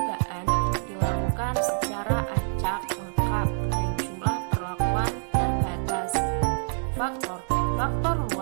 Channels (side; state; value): left; silent; 61 dB below the other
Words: dilakukan secara acak lengkap dan jumlah perlakuan terbatas. Faktor